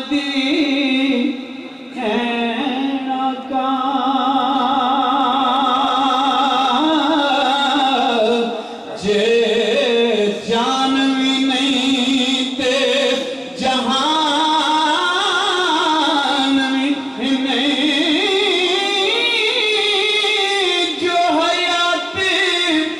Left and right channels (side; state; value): both; identical; correlation 1.00